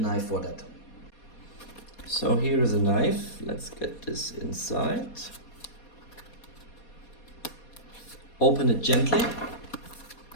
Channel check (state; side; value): late; right; 4.2 ms